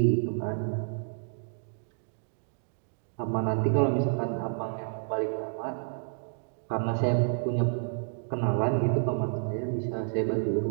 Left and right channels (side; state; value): left; silent; digital silence